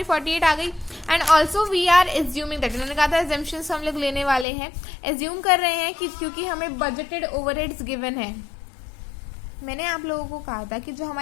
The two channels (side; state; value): right; drops out; at 4.5 s